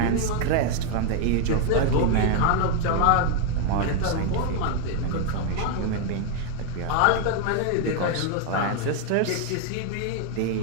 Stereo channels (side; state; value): both; different; correlation 0.01